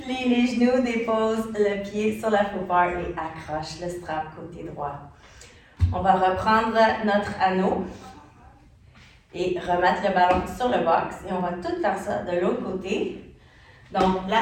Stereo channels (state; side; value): identical; both; correlation 1.00